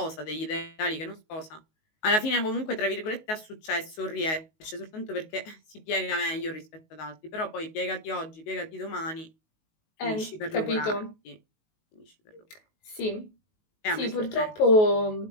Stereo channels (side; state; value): right; late; 19 ms